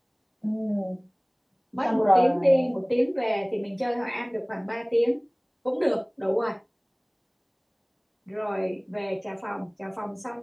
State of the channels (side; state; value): both; identical; correlation 1.00